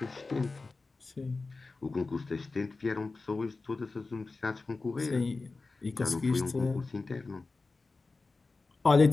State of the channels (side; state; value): right; quieter; 3.8 dB